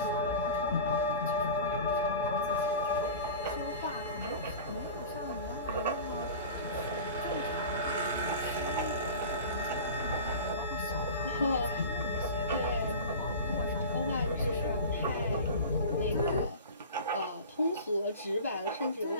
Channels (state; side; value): inverted; both; correlation -0.35